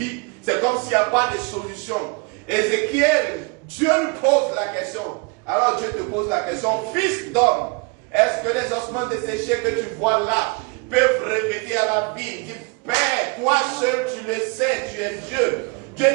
C'est comme s'il n'y a pas de solution. Ézéchiel, Dieu lui pose la question. Alors Dieu te pose la question, fils d'homme, est-ce que les ossements desséchés que tu vois là peuvent revenir à la vie? Il dit, Père, toi seul tu le sais, tu es Dieu. Dieu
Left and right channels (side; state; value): left; quieter; 30.0 dB